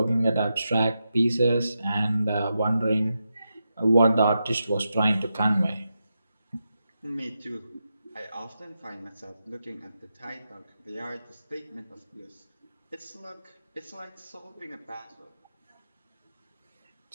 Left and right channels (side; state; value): both; inverted; correlation -0.88